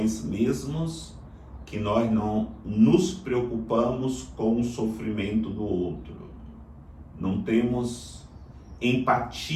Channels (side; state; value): both; identical; correlation 1.00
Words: mesmos que nós não nos preocupamos com o sofrimento do outro. Não temos